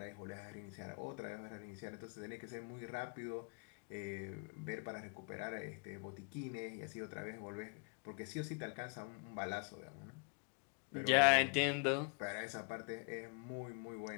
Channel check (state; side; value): quieter; right; 38.0 dB